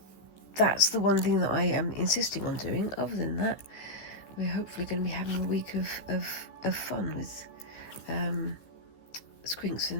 that's the one thing that I am insisting on doing. Other than that, we're hopefully going to be having a week of fun with Squinks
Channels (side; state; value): right; late; 14 ms